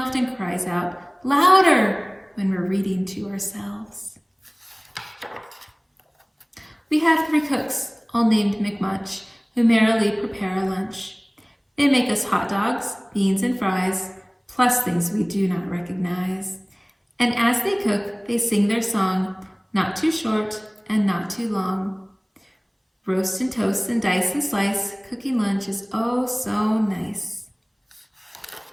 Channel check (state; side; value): identical; both; correlation 1.00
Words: cries out, "Louder!" when we're reading to ourselves. We have 3 cooks, all named McMunch, who merrily prepare our lunch. They make us hot dogs, beans, and fries, plus things we do not recognize. And as they cook, they sing their song, not too short and not too long. Roast and toast and dice and slice, cooking lunch is oh so nice.